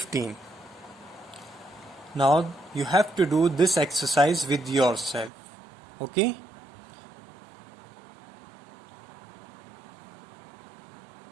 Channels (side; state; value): left; drops out; at 5.3 s